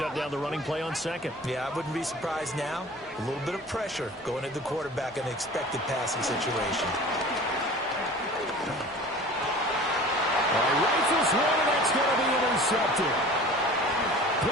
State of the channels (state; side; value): normal; both; correlation 0.42